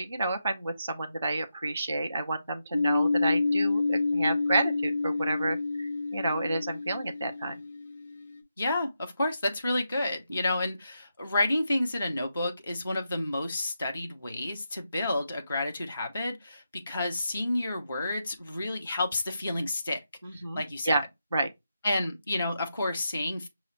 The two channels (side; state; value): both; inverted; correlation -0.86